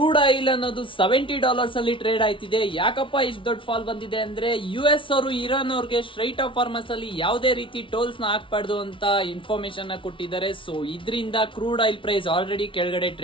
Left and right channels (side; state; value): right; late; 0.25 ms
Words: ಆಯಿಲ್ ಅನ್ನೋದು $70 ಅಲ್ಲಿ ಟ್ರೇಡ್ ಆಯ್ತಿದೆ. ಯಾಕಪ್ಪ ಇಷ್ಟು ದೊಡ್ಡ ಫಾಲ್ ಬಂದಿದೆ ಅಂದ್ರೆ US ಅವರು ಇರಾನ್ ಅವ್ರಿಗೆ ಸ್ಟ್ರೈಟ್ ಆಫ್ ಫಾರ್ಮಸ್ ಅಲ್ಲಿ ಯಾವುದೇ ರೀತಿ ಟೋಲ್ಸ್ ನ ಹಾಕ್ಬಾರ್ದು ಅಂತ ಇನ್ಫಾರ್ಮೇಶನ್ ನ ಕೊಟ್ಟಿದ್ದಾರೆ. ಸೊ ಇದರಿಂದ ಕ್ರೂಡ್ ಆಯಿಲ್ ಪ್ರೈಸ್ ಆಲ್ರೆಡಿ ಕೆಳಗಡೆ